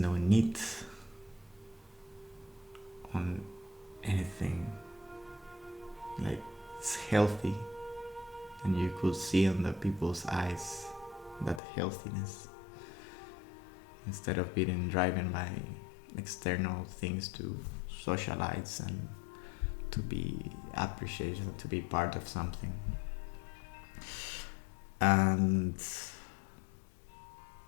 need on anything, like it's healthy, and you could see on the people's eyes that healthiness, instead of being driven by external things to socialize and to be appreciated, to be part of something. And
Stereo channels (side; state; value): right; drops out; at 11.6 s